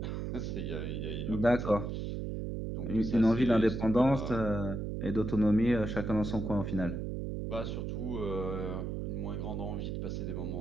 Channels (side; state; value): right; noise; hum, 3 dB below the sound